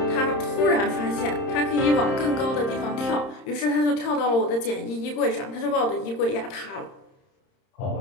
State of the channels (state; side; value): late; right; 30 ms